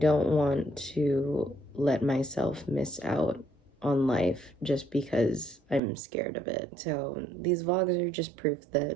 want to let myself miss out on life just because I'm scared of it. So these vlogs are just proof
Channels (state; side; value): drops out; left; at 5.8 s